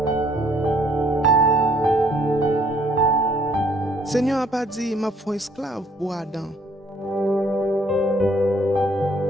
Seigneur n'a pas dit m'a fait esclave pour Adam.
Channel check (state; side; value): normal; both; correlation 0.63